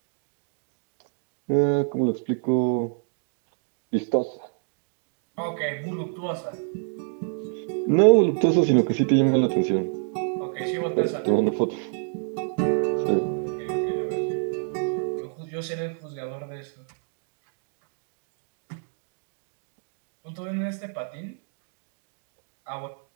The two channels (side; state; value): left; silent; 60 dB below the other